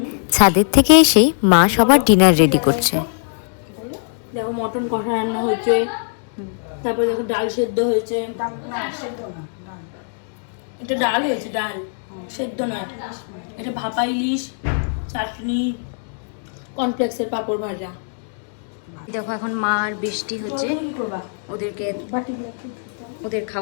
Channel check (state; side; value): silent; right; digital silence